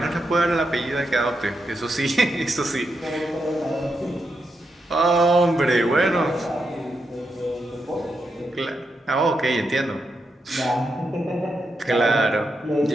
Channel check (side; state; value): both; normal; correlation 0.84